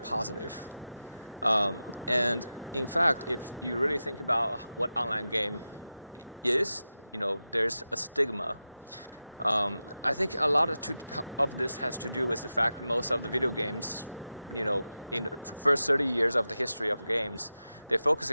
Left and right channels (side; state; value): both; inverted; correlation -0.93